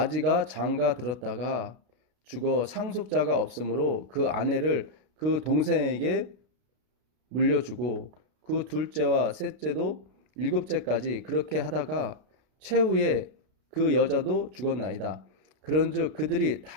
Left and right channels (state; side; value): late; left; 32 ms